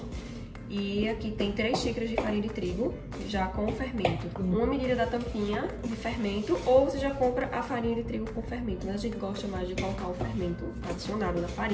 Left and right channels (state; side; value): identical; both; correlation 1.00